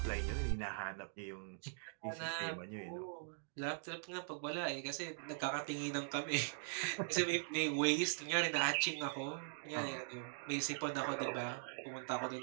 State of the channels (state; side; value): silent; left; digital silence